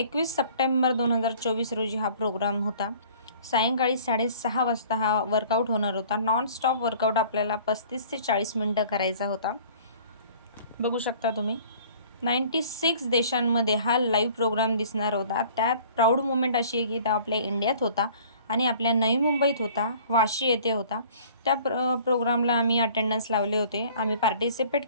सप्टेंबर 2024 रोजी हा प्रोग्राम होता. सायंकाळी 6:30 वाजता हा वर्कआउट होणार होता. नॉन स्टॉप वर्कआउट आपल्याला 35 ते 40 मिनटं करायचा होता. बघू शकता तुम्ही 96 देशांमध्ये हा लाईव्ह प्रोग्राम दिसणार होता. त्यात प्राऊड मोमेंट अशी आहे की तो आपल्या इंडियात होता आणि आपल्या नवी मुंबईत होता, वाशी येथे होता. त्या प्रोग्रामला आम्ही अटेंडन्स लावले होते. आम्ही पार्टिसिपेट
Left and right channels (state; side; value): inverted; both; correlation -0.50